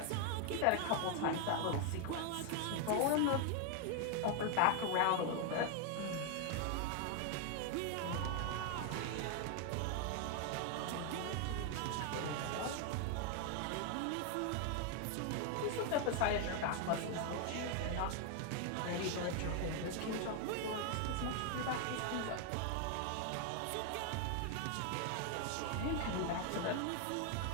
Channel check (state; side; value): different; both; correlation 0.00